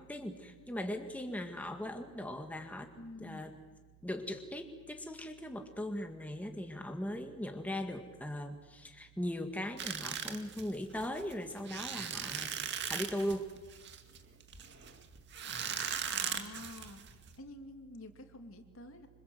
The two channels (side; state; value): right; noise; hum, 22 dB below the sound